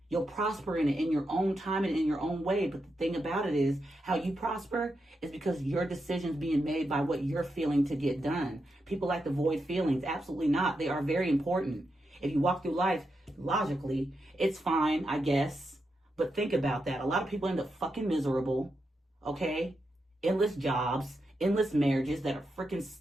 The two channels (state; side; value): normal; both; correlation 0.86